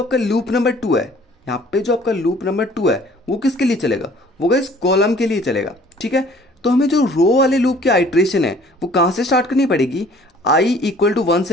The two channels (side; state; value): both; normal; correlation 0.54